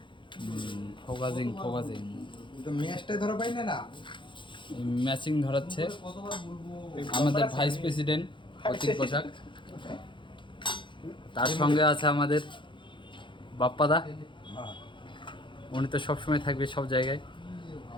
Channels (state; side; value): late; right; 0.23 ms